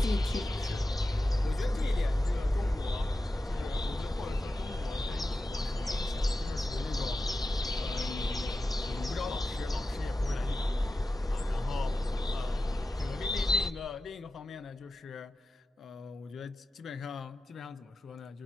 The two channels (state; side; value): normal; both; correlation 0.93